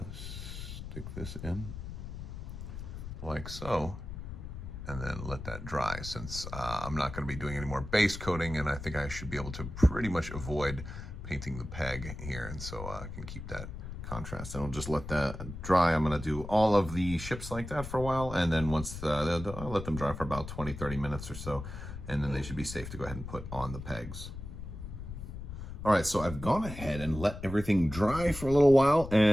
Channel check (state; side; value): noise; left; rumble, 9 dB below the sound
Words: stick this in like so, and then let that dry, since I'm not gonna be doing any more base coating, and I think I should be able to pretty much avoid painting the peg here, and so I can keep that contrast. And I'll just let that dry. I'm gonna do all of the ships like that for a while, and then once I'll let them dry for about 20-30 minutes or so, and then they should be safe to go ahead and put on the pegs. All right, so I've gone ahead and let everything dry for a little while,